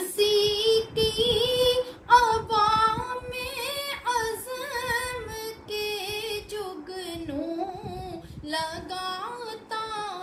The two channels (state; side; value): identical; both; correlation 1.00